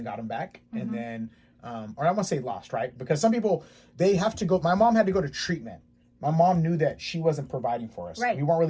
got them back, and then or I want to say lost, right? Because some people, they have to go. My mom had to go to treatment. My mom knew that she wasn't providing for us. Right. We weren't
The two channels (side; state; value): both; identical; correlation 1.00